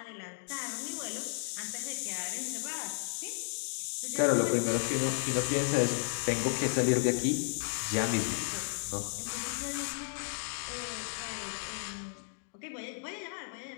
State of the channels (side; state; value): right; silent; digital silence